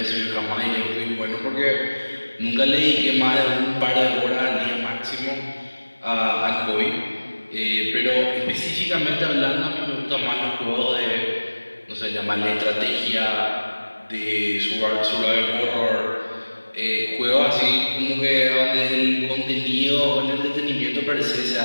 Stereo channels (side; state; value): both; inverted; correlation -1.00